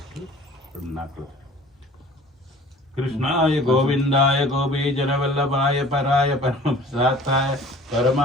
நாக்கில். கிருஷ்ணாய கோவிந்தாய கோபீஜனவல்லபாய பராய பரமசாத்தாய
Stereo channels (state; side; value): normal; both; correlation 0.48